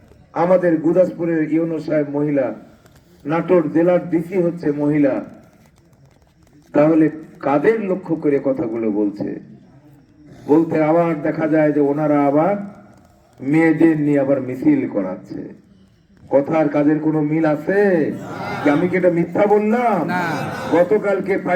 আমাদের গুদাসপুরের ইউনো সাহেব মহিলা, নাটোর জেলার ডিসি হচ্ছে মহিলা, তাহলে কাদের লক্ষ্য করে কথাগুলো বলছে? বলতে আবার দেখা যায় যে ওনারা আবার মেয়েদের নিয়ে আবার মিছিল করাচ্ছে। কথার কাজের কোনো মিল আছে কি? আমি কি এটা মিথ্যা বললাম? গতকালকে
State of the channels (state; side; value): identical; both; correlation 1.00